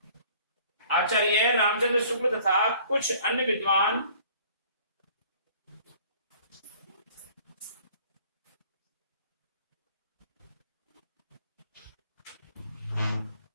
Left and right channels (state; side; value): inverted; both; correlation -0.53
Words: आचार्य रामचंद्र शुक्ल तथा कुछ अन्य विद्वान